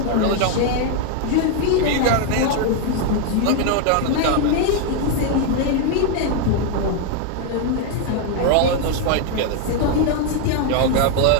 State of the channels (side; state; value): both; different; correlation 0.01